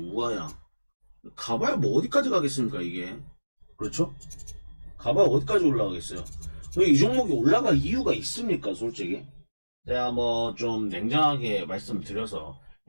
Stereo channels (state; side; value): inverted; both; correlation -1.00